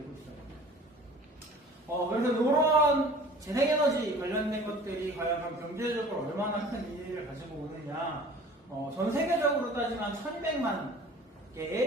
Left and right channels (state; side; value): normal; both; correlation 0.46